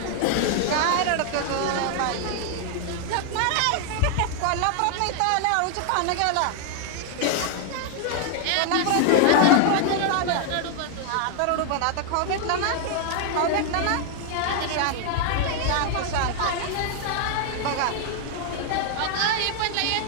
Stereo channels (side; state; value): both; different; correlation 0.00